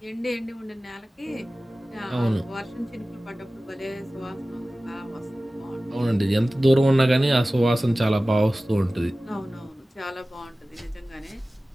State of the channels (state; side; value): normal; both; correlation 0.97